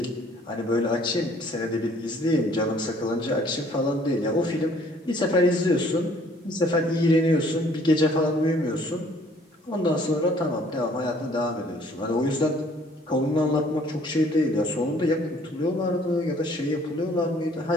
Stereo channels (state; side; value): normal; both; correlation 0.59